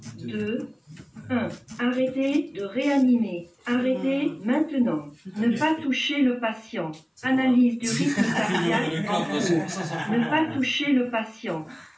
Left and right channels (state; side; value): identical; both; correlation 1.00